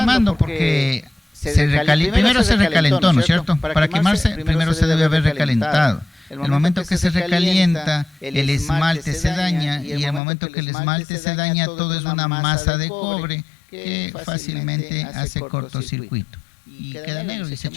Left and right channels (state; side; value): drops out; right; at 10.2 s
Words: porque primero se recalentó, ¿no es cierto? Para quemarse, primero se debe haber recalentado. El momento que se recalienta, el esmalte se daña, y el momento que el esmalte se daña, todo es una masa de cobre que fácilmente hace cortocircuito y queda negro y se